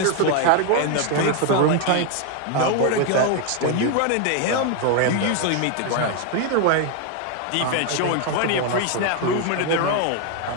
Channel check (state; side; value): different; both; correlation 0.01